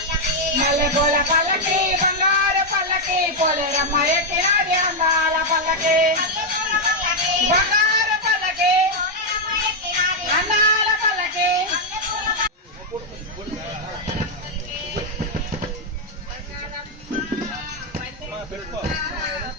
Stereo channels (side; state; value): both; normal; correlation 0.00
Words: పల్లకి బంగారు పల్లకి పోలేరమ్మ ఎక్కినాది అందాల పల్లకి బంగారు పల్లకి అందాల పల్లకి